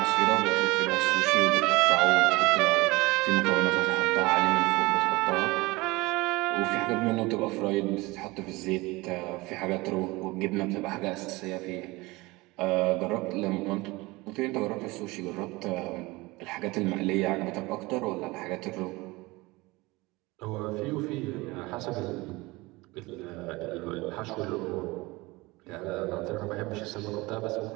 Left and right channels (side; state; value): left; quieter; 22.2 dB